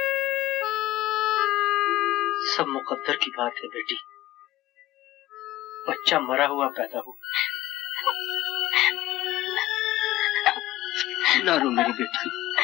सब मुकद्दर की बात है बेटी। बच्चा मरा हुआ पैदा हो। ना रो मेरी बेटी,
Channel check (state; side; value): quieter; right; 16.2 dB